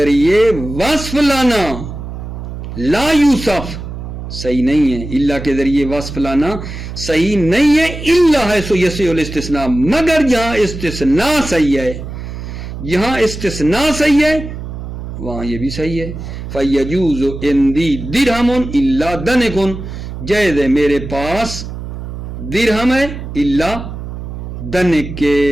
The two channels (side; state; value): right; noise; hum, 9 dB below the sound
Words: وصف لانا لا یوصف صحیح نہیں ہے، الا کے ذریعے وصف لانا صحیح نہیں ہے۔ الا حیث یصح الاستثناء، مگر جہاں استثناء صحیح ہے، جہاں استثناء صحیح ہے وہاں یہ بھی صحیح ہے۔ فیجوز عندی درہم الا دنک، جائز ہے میرے پاس درہم ہے الا دنک کے